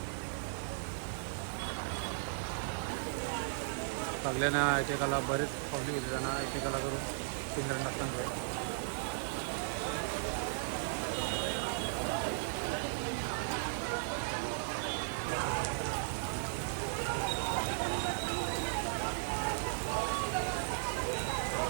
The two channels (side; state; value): left; silent; 54 dB below the other